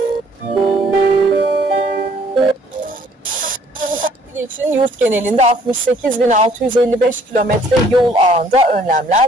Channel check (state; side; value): normal; both; correlation 0.60